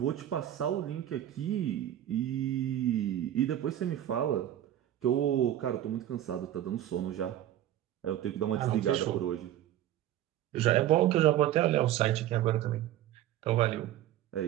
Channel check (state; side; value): quieter; left; 12.4 dB